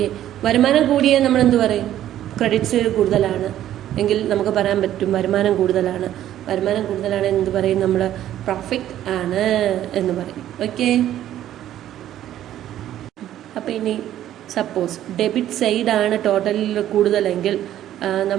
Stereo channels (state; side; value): quieter; left; 12.2 dB